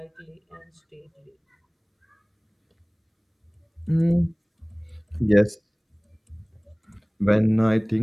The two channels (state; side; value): identical; both; correlation 1.00